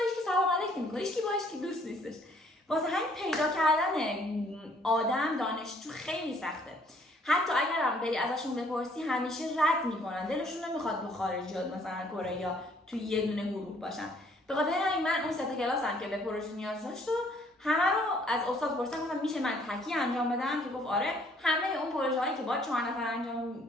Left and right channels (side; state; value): both; normal; correlation 0.62